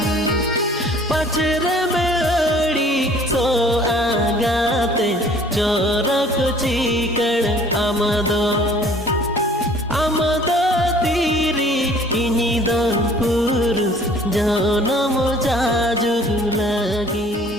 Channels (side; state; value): both; normal; correlation 0.52